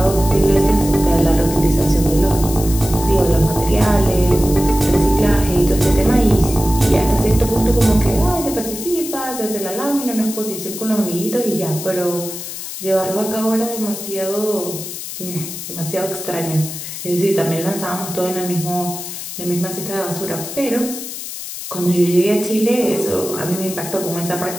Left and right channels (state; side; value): noise; left; hiss, 9 dB below the sound